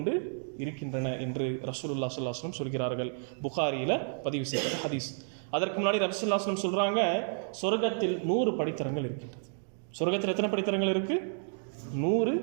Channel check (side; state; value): left; silent; 57 dB below the other